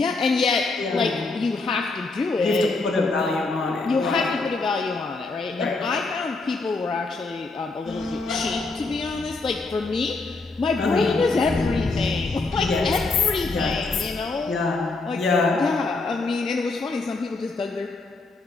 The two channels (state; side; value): quieter; right; 3.6 dB